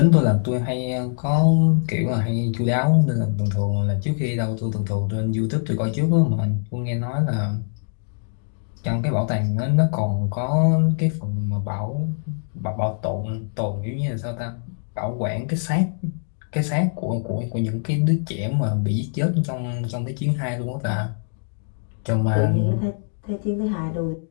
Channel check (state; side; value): silent; right; digital silence